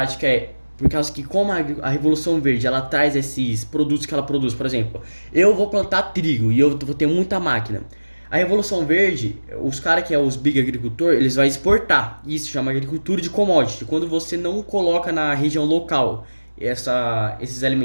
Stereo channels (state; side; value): inverted; both; correlation -1.00